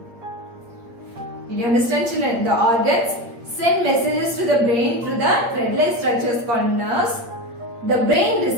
Did you understand children? The organs send messages to the brain through the thread-like structures called nerves. The brain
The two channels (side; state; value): left; late; 8.6 ms